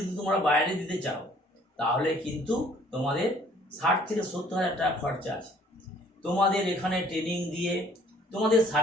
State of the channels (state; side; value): normal; both; correlation 0.58